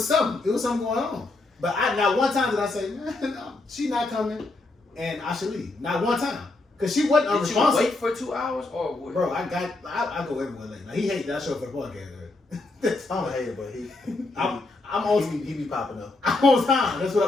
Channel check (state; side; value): quieter; right; 3.1 dB